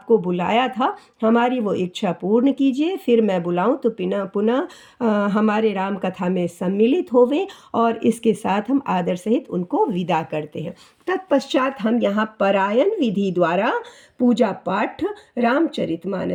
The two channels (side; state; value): both; identical; correlation 1.00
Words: बुलाया था हमारी वो इच्छा पूर्ण कीजिए, फिर मैं बुलाऊं तो पुनः हमारे राम कथा में सम्मिलित होवें, और इसके साथ हम आदर सहित उनको विदा करते हैं। तत्पश्चात हम यहाँ परायण विधि द्वारा पूजा पाठ